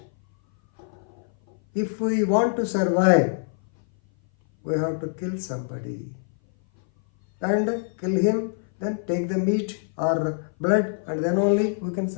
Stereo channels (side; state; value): right; silent; 58 dB below the other